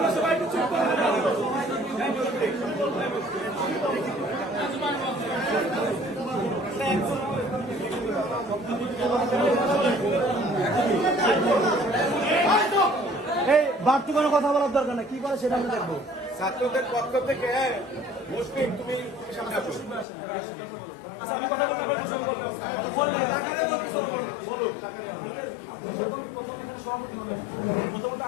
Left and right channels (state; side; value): drops out; right; at 20.1 s